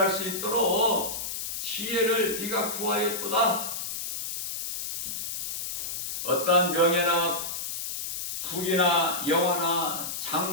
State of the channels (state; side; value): noise; left; hiss, 5 dB below the sound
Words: 수 있도록 지혜를 네가 구하였도다. 어떠한 명예나 부귀나 영화나